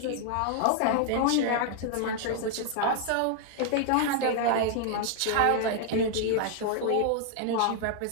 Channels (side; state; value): both; different; correlation 0.00